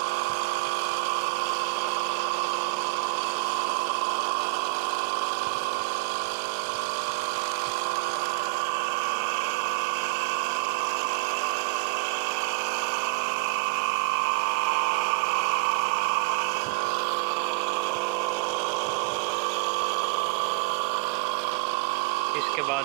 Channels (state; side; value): quieter; left; 29.8 dB